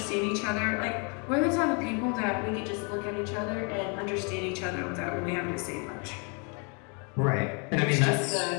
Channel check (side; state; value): right; quieter; 35.7 dB